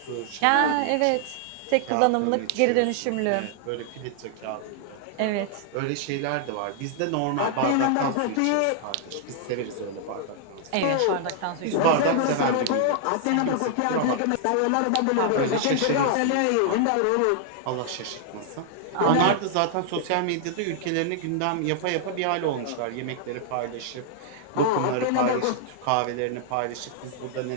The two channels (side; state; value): both; different; correlation 0.00